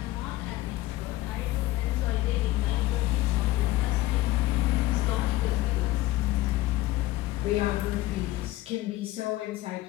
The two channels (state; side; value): quieter; right; 16.8 dB